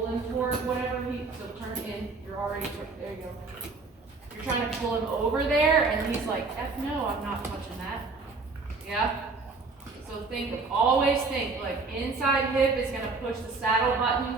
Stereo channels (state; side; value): quieter; left; 4.0 dB